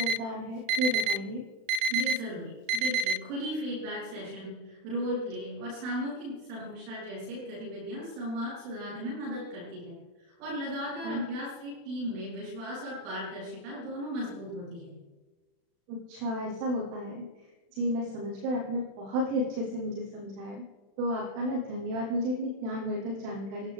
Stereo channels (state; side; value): late; left; 36 ms